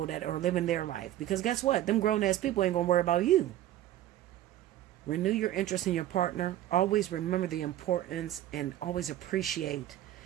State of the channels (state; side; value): quieter; left; 13.3 dB